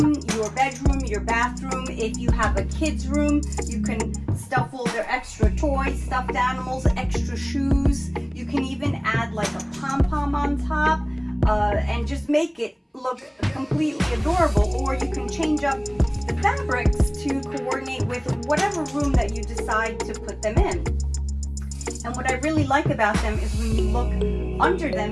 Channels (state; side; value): identical; both; correlation 1.00